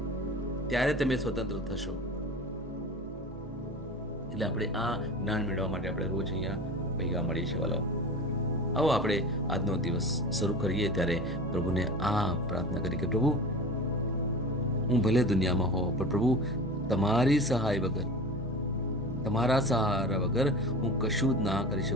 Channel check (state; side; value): normal; both; correlation 0.35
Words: ત્યારે તમે સ્વતંત્ર થશો. એટલે આપણે આ જ્ઞાન મેળવવા માટે આપણે રોજ અહીંયા ભેગા મળીએ છીએ વાલાઓ. આવો આપણે આજનો દિવસ શરૂ કરીએ ત્યારે પ્રભુને આ પ્રાર્થના કરી કે પ્રભુ, હું ભલે દુનિયામાં હોઉં પણ પ્રભુ તમારી સહાય વગર, તમારા સહારા વગર હું કશું જ ના કરી